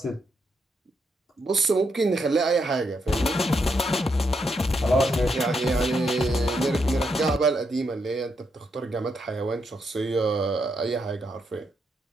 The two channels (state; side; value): normal; both; correlation 0.80